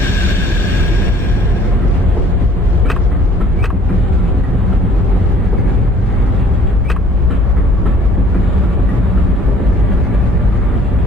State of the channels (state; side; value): normal; both; correlation 0.55